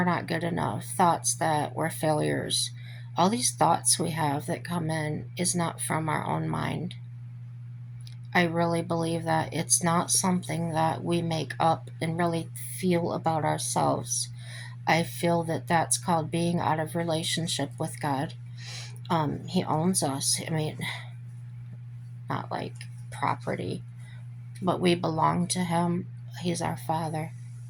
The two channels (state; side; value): identical; both; correlation 1.00